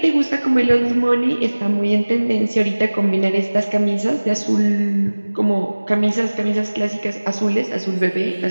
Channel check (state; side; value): inverted; both; correlation -1.00